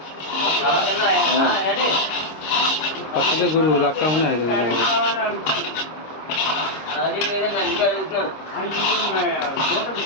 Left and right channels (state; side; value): late; right; 26 ms